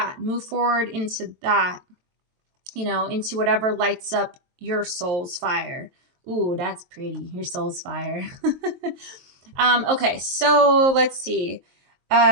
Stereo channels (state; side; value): late; left; 23 ms